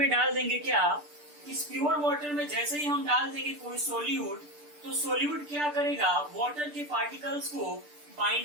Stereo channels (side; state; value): left; late; 6.8 ms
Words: डाल देंगे, क्या, इस प्योर वाटर में जैसे ही हम डाल देंगे कोई सोल्यूट, तो सोल्यूट क्या करेगा, वाटर के पार्टिकल्स को